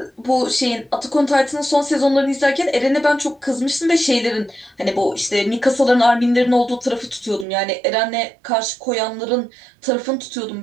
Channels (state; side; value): drops out; left; at 7.5 s